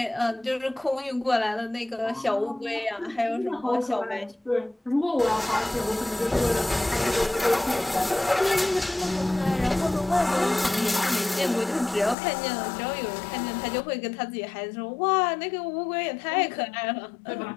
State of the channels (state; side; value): drops out; right; at 12.2 s